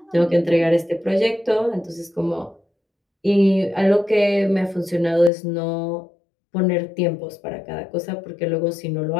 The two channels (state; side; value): drops out; right; at 5.3 s